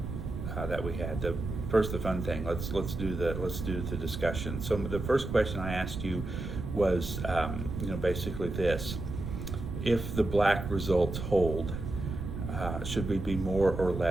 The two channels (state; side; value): noise; right; rumble, 6 dB below the sound